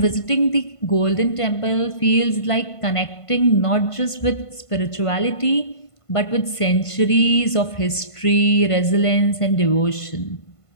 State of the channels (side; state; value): right; late; 1.5 ms